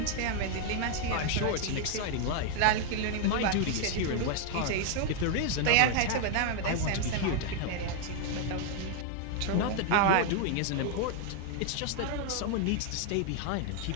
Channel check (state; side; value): different; both; correlation 0.00